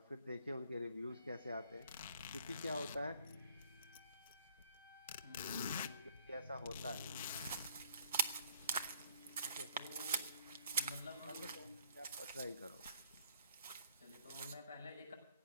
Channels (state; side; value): inverted; both; correlation -0.61